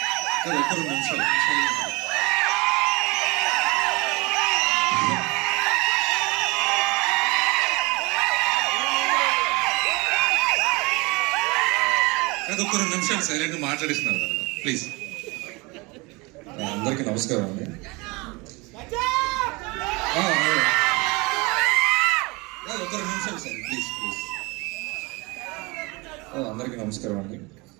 ఒక్క 2 నిమిషాలు సైలెంట్ మాట్లాడిస్తున్నారు ప్లీజ్. అందరికీ నమస్కారం అండి. ఒక్క 2 నిమిషాలు సార్ ప్లీజ్ ప్లీజ్. అందరికీ నమస్కారం అండి.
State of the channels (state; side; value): quieter; left; 25.8 dB